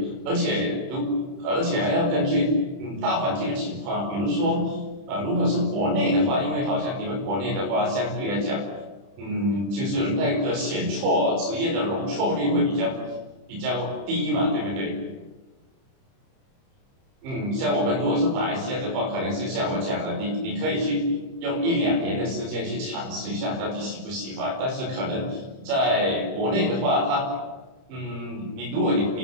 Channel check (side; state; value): left; late; 30 ms